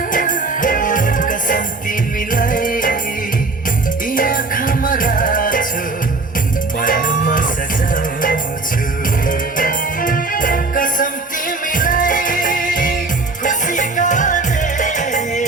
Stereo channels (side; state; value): left; quieter; 3.5 dB